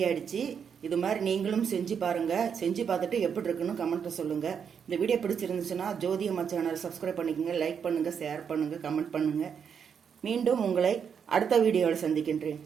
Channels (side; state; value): left; quieter; 7.2 dB